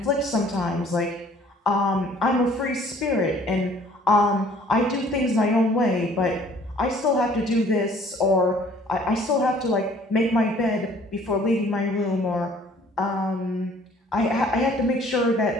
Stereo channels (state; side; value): normal; both; correlation 0.56